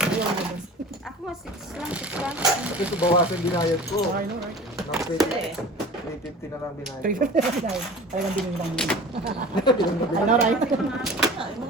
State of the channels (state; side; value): normal; both; correlation 0.39